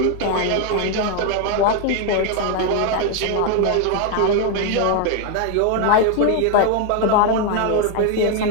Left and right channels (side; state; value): both; different; correlation 0.01